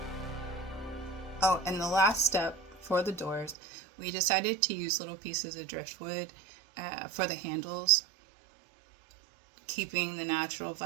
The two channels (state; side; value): drops out; left; at 3.6 s